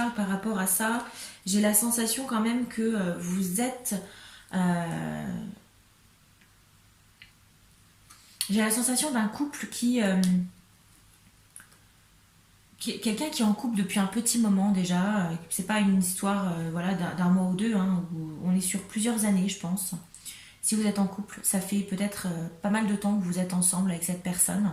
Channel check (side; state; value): both; identical; correlation 1.00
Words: par rapport à ça? J'ai la sensation quand même que vous êtes... euh, j'ai la sensation d'un couple quelqu'un qui est en couple depuis un petit moment déjà. C'est pas une histoire voilà, d'un mois ou deux, hein, où on est sur plusieurs années, je pense. Si vous êtes en couple, ça fait peut-être pas mal de temps que vous êtes ensemble avec cette personne.